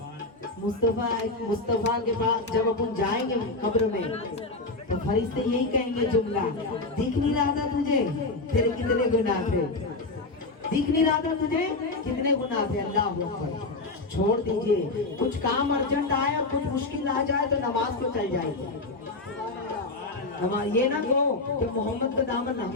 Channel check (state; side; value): quieter; right; 3.2 dB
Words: मुस्तफा के पास जब अपन जाएंगे कब्र में तो फरिश्ते यही कहेंगे जुमला, दिख नहीं रहा था तुझे तेरे कितने गुनाह थे, दिख नहीं रहा था तुझे कितने गुनाह थे। अल्लाह अकबर। छोड़ दीजिए, कुछ काम अर्जेंट आया, कुछ मुश्किल आ जाए तो नमाज को चल जाएगी। नमाज ये ना कहो कि मोहम्मद का दामन,